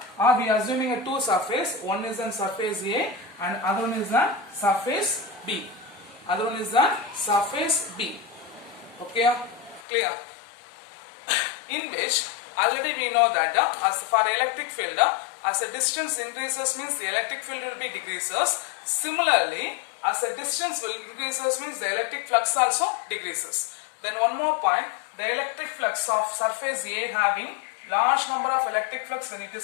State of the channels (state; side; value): drops out; right; at 9.8 s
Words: or we are assuming a two surface. One is on surface A and other one is the surface B. Other one is the surface B. Okay, clear? In which already we know that as for electric field, as the distance increases, means the electric field will be decreases. Similarly, as the distance will increases, means the electric flux also decreases. Then one more point, the electric flux of surface A having large number of electric flux when it